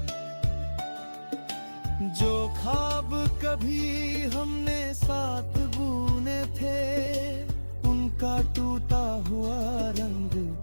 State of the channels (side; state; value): both; inverted; correlation -1.00